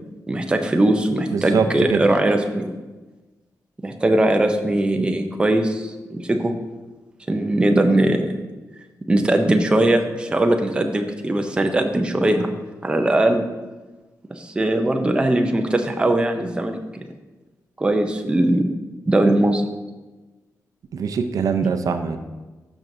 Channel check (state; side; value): normal; both; correlation 0.91